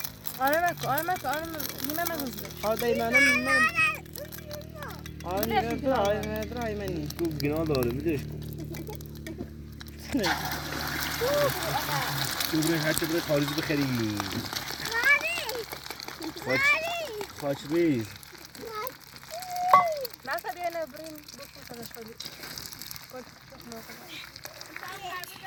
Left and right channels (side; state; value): both; identical; correlation 1.00